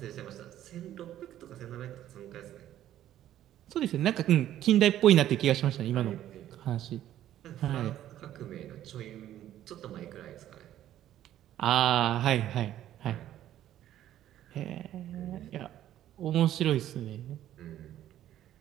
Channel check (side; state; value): left; quieter; 12.3 dB